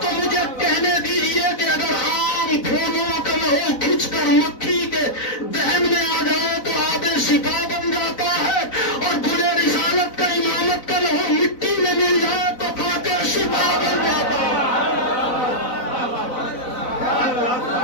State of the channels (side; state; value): right; late; 4.0 ms